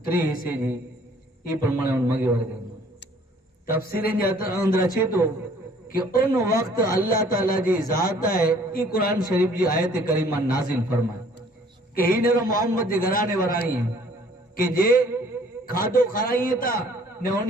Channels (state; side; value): normal; both; correlation 0.57